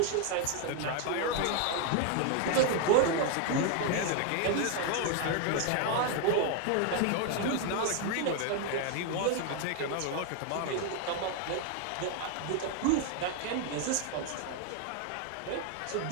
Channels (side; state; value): both; different; correlation 0.01